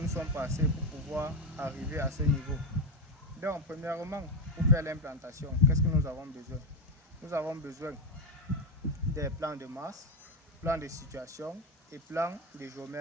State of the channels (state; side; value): normal; both; correlation 0.10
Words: nous sommes passés pour pouvoir arriver à ce niveau. Donc, premièrement, pour faire l'implantation, qu'est-ce que nous avons besoin? Nous avons besoin des plans de masse, plans de situation et plans de